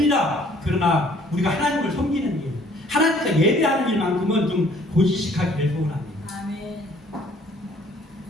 그러나, 우리가 하나님을 섬기는 일, 하나님과 예배하는 일만큼은 좀 고지식하기를 소원합니다. 아멘.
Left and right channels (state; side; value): normal; both; correlation 0.59